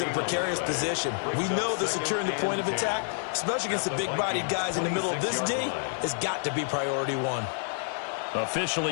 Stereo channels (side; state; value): right; silent; digital silence